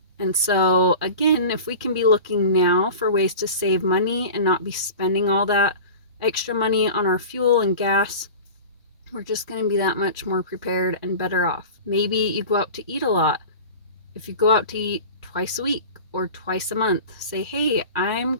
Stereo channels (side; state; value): both; inverted; correlation -0.35